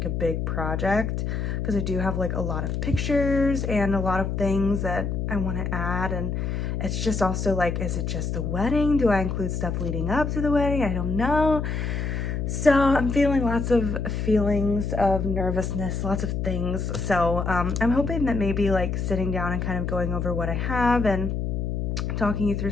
big project, because I do have a lot of pictures and a lot of things that I want to add. And it's just also is it just the wedding? Do I include stuff leading up to the wedding? I don't know. So I'm feeling lots of feelings of nervousness, lots of things. So I'm hoping that maybe sitting down and kind of going over what I have and talking you through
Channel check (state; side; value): noise; left; hum, 1 dB below the sound